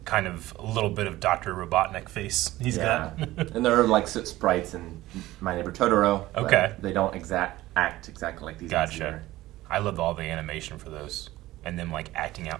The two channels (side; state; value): left; quieter; 16.8 dB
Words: kind of a little bit of Dr. Robotnik face he's got. And there are like soot sprites in My Neighbor Totoro. Okay. They don't act exactly like these. Gotcha. I loved all the animation for those. And them like acting